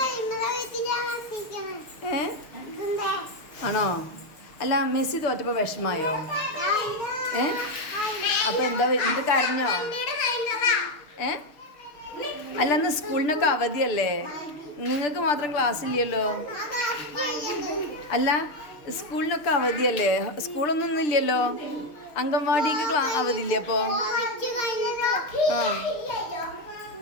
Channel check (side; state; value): right; late; 6.8 ms